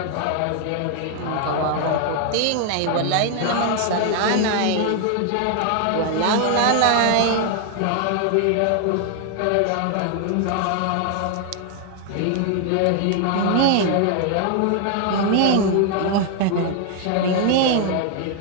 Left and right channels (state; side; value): different; both; correlation 0.00